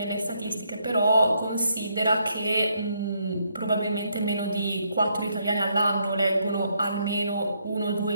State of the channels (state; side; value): inverted; both; correlation -0.75